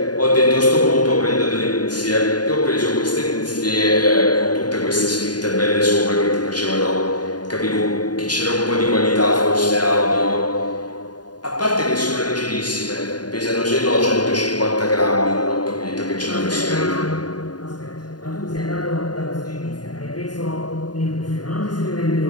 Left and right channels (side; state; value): right; late; 0.70 ms